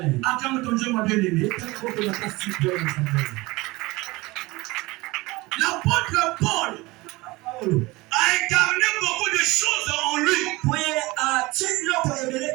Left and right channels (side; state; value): left; quieter; 21.7 dB